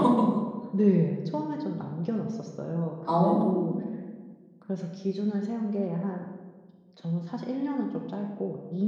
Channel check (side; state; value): both; identical; correlation 1.00